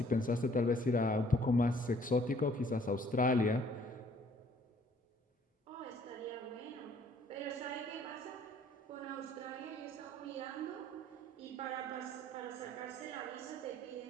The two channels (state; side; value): normal; both; correlation 0.60